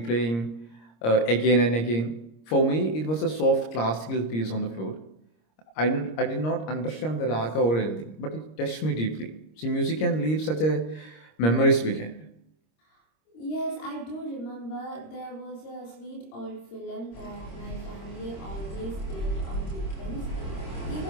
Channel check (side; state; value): right; late; 26 ms